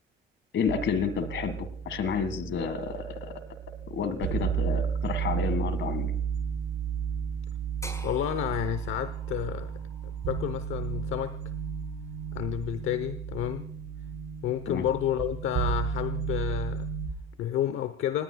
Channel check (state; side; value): normal; both; correlation 0.35